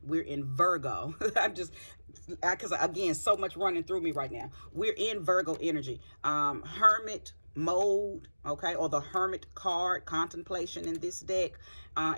we're in Virgo. Because again, so much running through me right now. We're in Virgo energy. Hermit mode, okay, or the Hermit card, contemplation in this deck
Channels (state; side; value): inverted; both; correlation -1.00